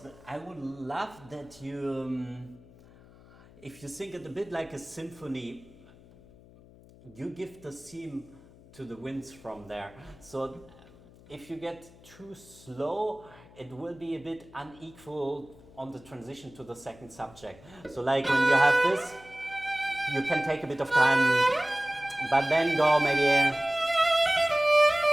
I would love that you, if you think it a bit like a symphony, you give the theme to the winds from there. So if you get too slow, it will be a bit unequal on the transition to the second subject. So like when you have this, you can take a bit of time, but then go maybe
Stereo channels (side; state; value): left; noise; hum, 23 dB below the sound